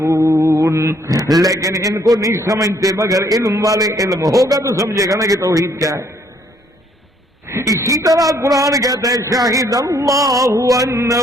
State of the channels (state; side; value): normal; both; correlation 0.66